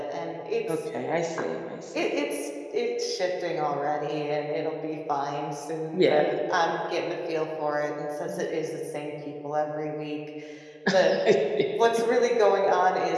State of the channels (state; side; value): identical; both; correlation 1.00